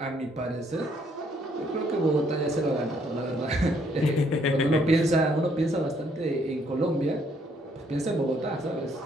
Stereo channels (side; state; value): both; normal; correlation 0.68